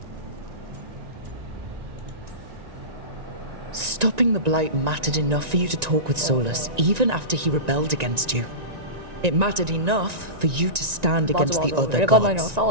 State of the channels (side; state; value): left; late; 1.9 ms